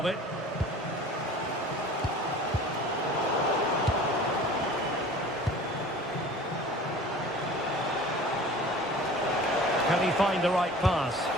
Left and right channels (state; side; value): normal; both; correlation 0.43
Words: it. Can he find the right pass?